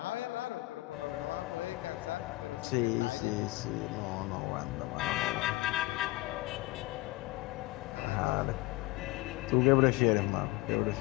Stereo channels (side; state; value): right; quieter; 20.7 dB